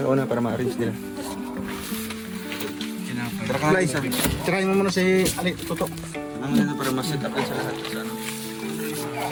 para ma-arrange nila. Tara ka isa. Tirahin mo muna si Toto. Sumama na para ma-set up din sa lahat. Sa ano.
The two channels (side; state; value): both; identical; correlation 1.00